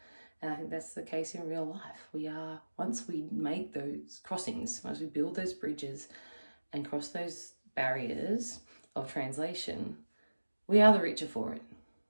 And I think that's the case in real life. We are, once we make those crossings, once we build those bridges and cross those barriers of translation, we are the richer for it.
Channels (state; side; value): inverted; both; correlation -1.00